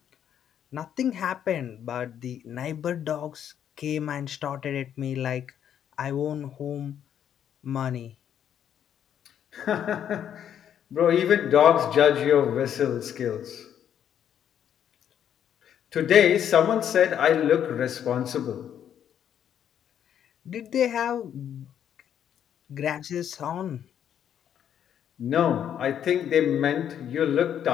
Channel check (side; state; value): right; quieter; 9.4 dB